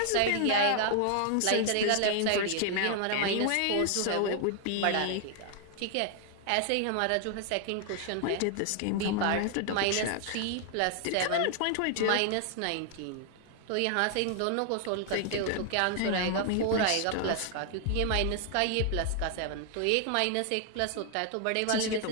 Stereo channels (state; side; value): different; both; correlation 0.00